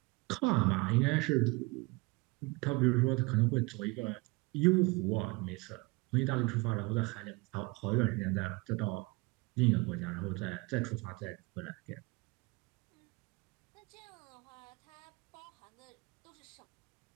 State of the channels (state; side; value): quieter; left; 25.6 dB